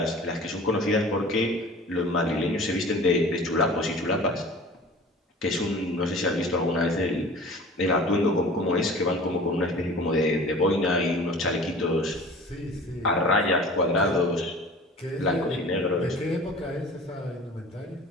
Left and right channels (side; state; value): both; normal; correlation 0.42